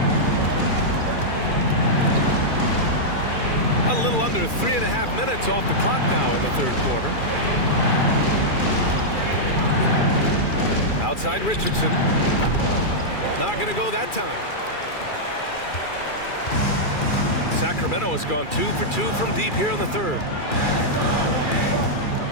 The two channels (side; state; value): right; late; 2.4 ms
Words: A little under 3.5 minutes off the clock now in the third quarter. Outside Richardson. Not going to go that time. Sacramento has gone 2 for 2 from deep here in the third.